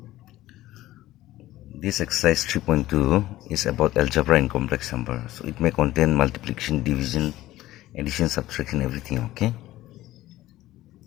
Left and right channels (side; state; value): right; quieter; 15.8 dB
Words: This exercise 3.2 is about algebra and complex number. So it may contain multiplication, division, addition, subtraction, everything. Okay.